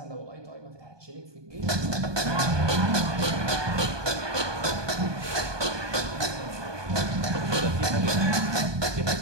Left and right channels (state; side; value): late; left; 1.2 ms